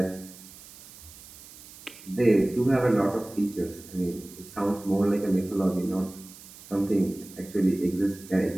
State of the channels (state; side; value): noise; right; hiss, 19 dB below the sound